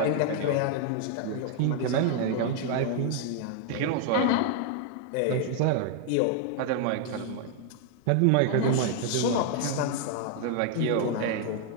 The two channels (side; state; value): both; different; correlation 0.00